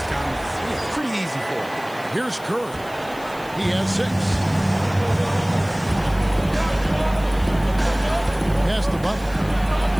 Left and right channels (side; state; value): left; noise; hiss, 21 dB below the sound